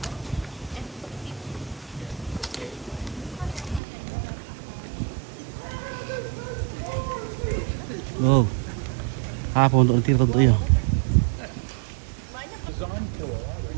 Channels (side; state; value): left; drops out; at 3.8 s